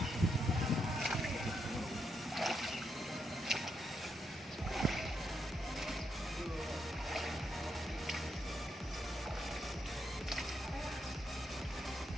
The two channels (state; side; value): normal; both; correlation 0.81